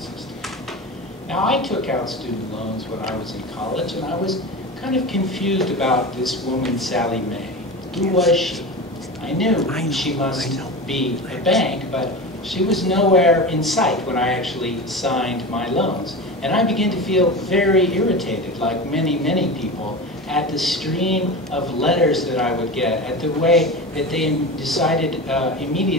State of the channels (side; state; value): both; normal; correlation 0.27